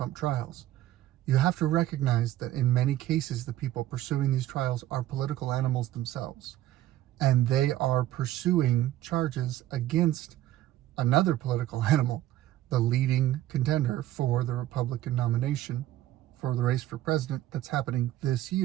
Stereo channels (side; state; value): left; quieter; 13.9 dB